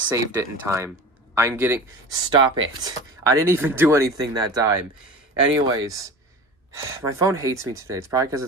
it in time. I'm getting... Stop it. I didn't even do anything that time. Anyways, my phone hates me today. It's probably because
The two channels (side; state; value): both; normal; correlation 0.34